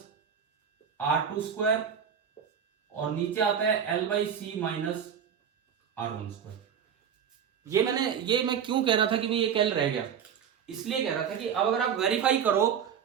R2², और नीचे आता है L/C माइनस R1²। ये मैं क्यों कह रहा था कि भाई एक L रह गया, इसलिए कह रहा था कि अब अगर आप वेरीफाई करो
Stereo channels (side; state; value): left; quieter; 8.0 dB